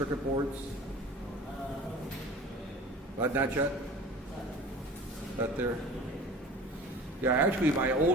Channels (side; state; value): both; normal; correlation 0.41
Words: boards? Not yet? Out there? Yeah, actually my